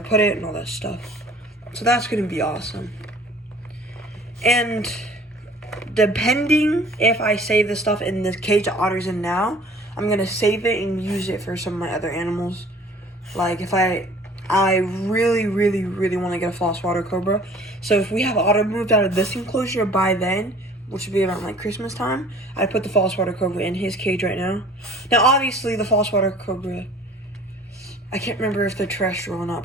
put it and all that stuff. So that's going to be awesome. And depending if I save the stuff in the cage that Otter's in now, I'm going to save it and use it for some of my other animals. Like if I really want to get a false water cobra. So if we have Otter moved out of this enclosure by then, which would be around like Christmas time, I'd put the false water cobra in his cage right now. Now obviously the false water cobra, I can't remember if they're terrestrial or not,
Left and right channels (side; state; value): both; normal; correlation 0.50